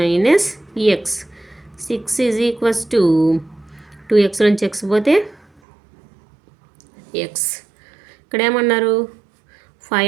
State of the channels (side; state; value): left; drops out; at 5.6 s